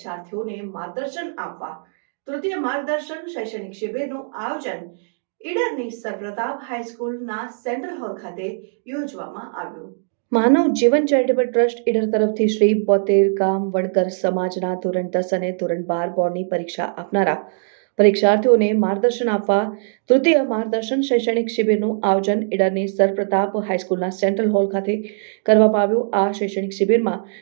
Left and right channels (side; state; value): left; silent; digital silence